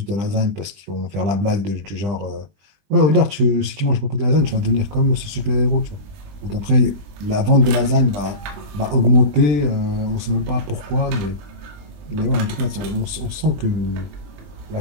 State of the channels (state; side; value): late; left; 20 ms